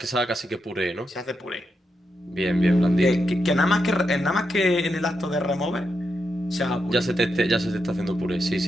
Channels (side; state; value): both; normal; correlation 0.85